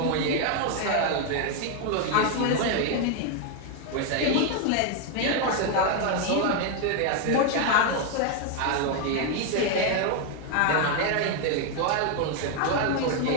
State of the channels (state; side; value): different; both; correlation 0.01